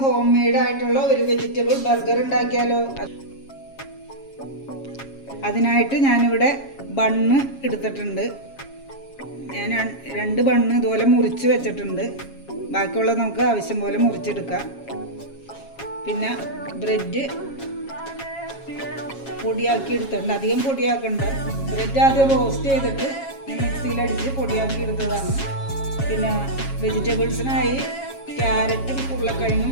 home made ആയിട്ടുള്ള ഒരു വെജിറ്റബിൾ ബർഗർ ഉണ്ടാക്കിയാലോ? അതിനായിട്ട് ഞാനിവിടെ ബണ്ണ് എടുത്തിട്ടുണ്ട്. ഞാൻ 2 ബണ്ണ് ഇതുപോലെ മുറിച്ച് വെച്ചിട്ടുണ്ട്. ബാക്കിയുള്ളത് നമുക്ക് ആവശ്യം പോലെ മുറിച്ചെടുക്കാം. പിന്നെ ബ്രെഡ് പൊടിയാക്കി എടുത്തിട്ടുണ്ട്. അധികം പൊടിയാക്കണ്ട. ബ്രെഡ് ആദ്യം റോസ്റ്റ് ചെയ്തിട്ട് മിക്സിയിലടിച്ച് പൊടിയാക്കി എടുത്തതാണ്. പിന്നെ വെജിറ്റബിൾസിനായി ക്യാരറ്റും ഉരുളക്കിഴങ്ങും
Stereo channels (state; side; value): late; right; 7.3 ms